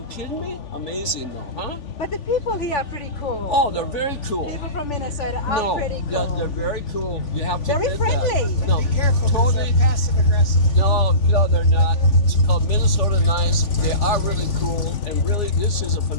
kidding me? Amazing though, huh? But the people here are pretty cool. Oh, they're very cool. People from Minnesota are pretty cool. Yeah, they're very cool. You have to Very admit friendly. that. No, Be careful, because totally. they're passive aggressive. No, they're not. It's called Minnesota Nice. They are really cool, and really, this is a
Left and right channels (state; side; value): late; right; 3.5 ms